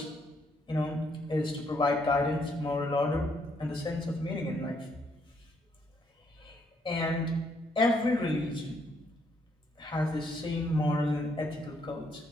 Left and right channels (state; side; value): normal; both; correlation 0.72